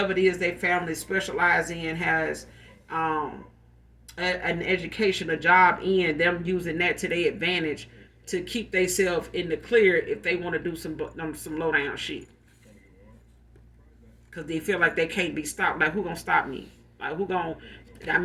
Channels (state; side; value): identical; both; correlation 1.00